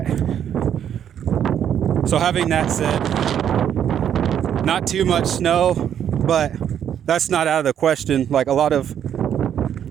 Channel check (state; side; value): quieter; left; 9.3 dB